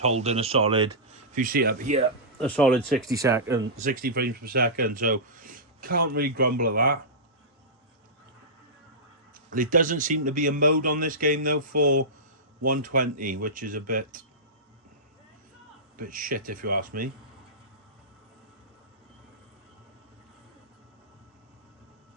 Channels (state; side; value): normal; both; correlation -0.16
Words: holding a solid, if you see up here, a solid 60 frames per second. So can't really grumble at that. There doesn't seem to be a mode on this game though for 120, which is a bit shit if you ask me.